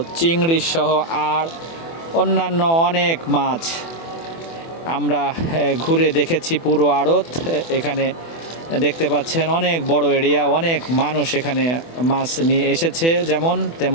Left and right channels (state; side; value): late; right; 24 ms